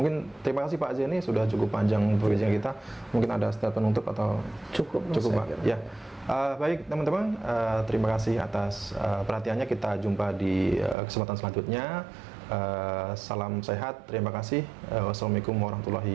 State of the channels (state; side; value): drops out; left; at 11.0 s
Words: terima kasih Pak Zeni, sudah cukup panjang perbincangan kita. Mungkin ada statement penutup atau cukup Pak? Ya. Baik teman-teman, terima kasih atas perhatiannya. Kita jumpa di kesempatan selanjutnya. Salam sehat, terima kasih. Wassalamualaikum